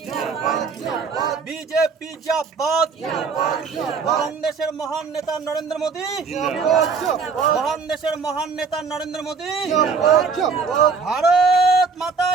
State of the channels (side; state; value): left; quieter; 5.2 dB